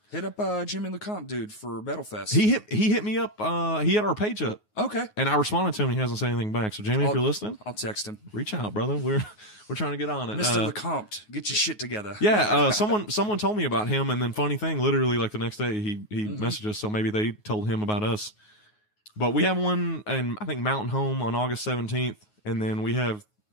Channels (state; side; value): late; right; 9.5 ms